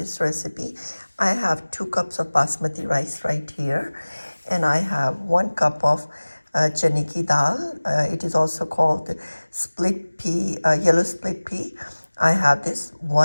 recipe. I have 2 cups of basmati rice right here, and I have 1 cup of chane ki dal. It is also called split pea, yellow split pea. I have this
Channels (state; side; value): inverted; both; correlation -1.00